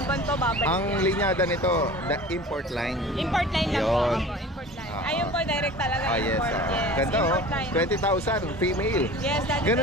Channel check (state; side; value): normal; both; correlation 0.40